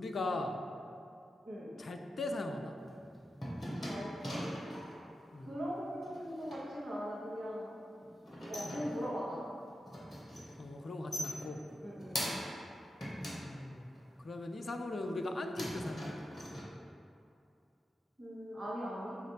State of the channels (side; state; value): both; normal; correlation 0.89